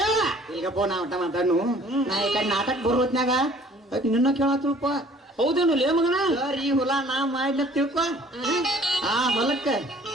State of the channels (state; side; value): normal; both; correlation 0.54